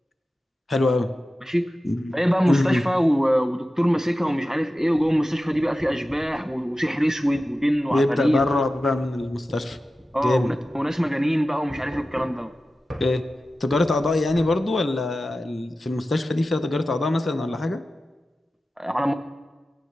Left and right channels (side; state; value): both; normal; correlation 0.94